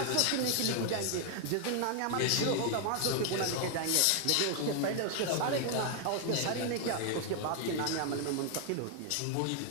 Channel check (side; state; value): both; different; correlation 0.00